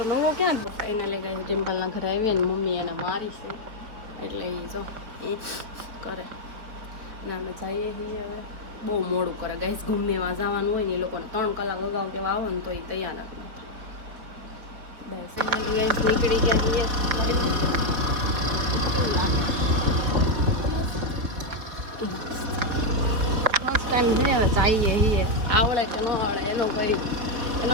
નવો ક્યાં એને લઈ ગયા છે? ડિમ્પલના ઘરે આવીએ ને મમ્મી એને મારી છે, એટલે એ જો એ કરે ને અમે જઈએ છીએ. હવે બહુ મોડું કરે ગાઈસ. ગમે એમાં જવાનું હોય ને એ લોકોને 3 કલાક અગાઉ કેવા આવે ને તો એ તૈયાર નથી. બસ ફાઇનલી ગાઈસ નીકળી ગયા છીએ. ફર્સ્ટ ટાઈમ છે ને જઈએ છીએ. આવડે કે ન આવડે એનો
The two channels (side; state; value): left; late; 4.8 ms